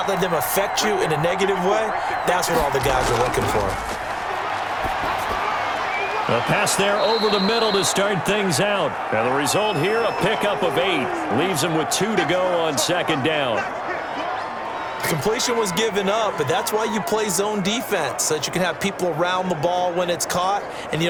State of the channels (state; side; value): identical; both; correlation 1.00